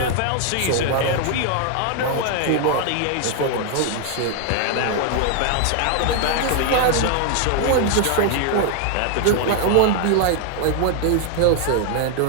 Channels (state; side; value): different; both; correlation 0.00